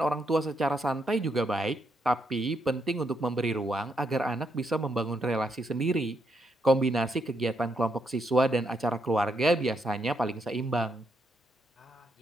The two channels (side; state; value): both; normal; correlation 0.78